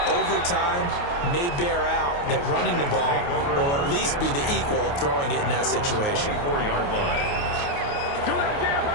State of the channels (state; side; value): late; right; 28 ms